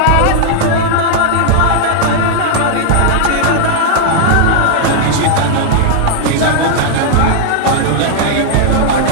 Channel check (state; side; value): different; both; correlation -0.01